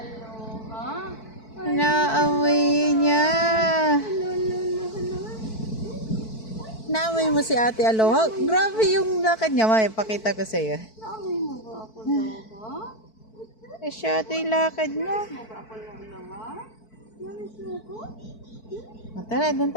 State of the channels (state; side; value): late; right; 4.5 ms